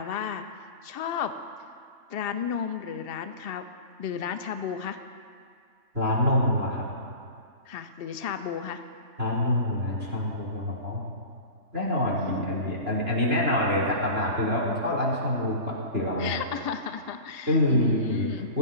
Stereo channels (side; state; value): left; late; 2.7 ms